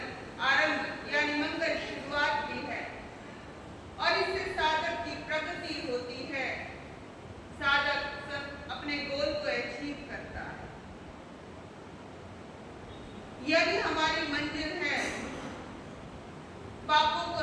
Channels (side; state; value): both; identical; correlation 1.00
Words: आरंभ यानी मंगल शुरुआत भी है और इससे साधक की प्रगति होती है। साधक अपने गोल को अचीव करता है। यही हमारी मंजिल है, पापों को